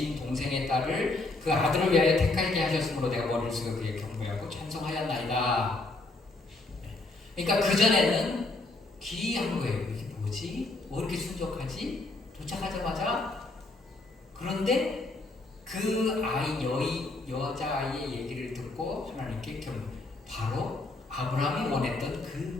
동생의 딸을 그 아들을 위하여 택하게 하셨으므로 내가 머리를 숙여 그에게 경배하고 찬송하였나이다. 그러니까 그전에는 기이한 거예요. 이게 뭐지? 뭐 이렇게 순종하지? 도착하자마자 그런데 그 여자아이의 얘기를 듣고 하나님께 바로 아브라함이 원했던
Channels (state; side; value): quieter; right; 3.1 dB